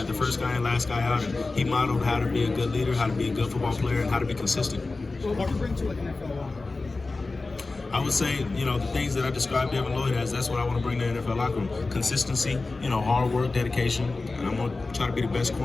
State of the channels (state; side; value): quieter; right; 3.5 dB